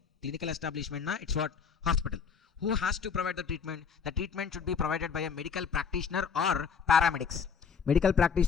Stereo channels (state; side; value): quieter; right; 6.3 dB